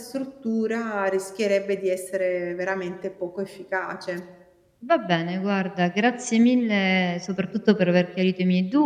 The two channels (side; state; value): both; identical; correlation 1.00